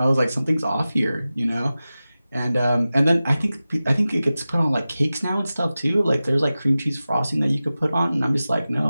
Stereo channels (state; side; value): inverted; both; correlation -0.95